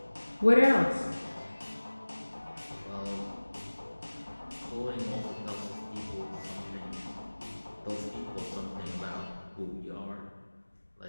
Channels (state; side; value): inverted; both; correlation -1.00